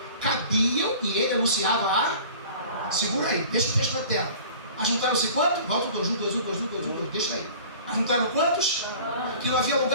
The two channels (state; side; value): inverted; both; correlation -0.45